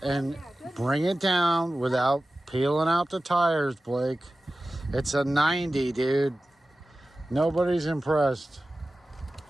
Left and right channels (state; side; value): normal; both; correlation 0.95